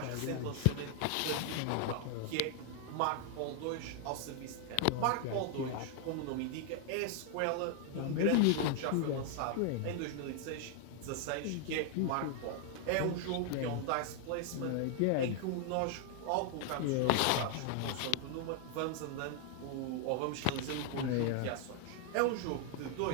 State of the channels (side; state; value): both; different; correlation 0.00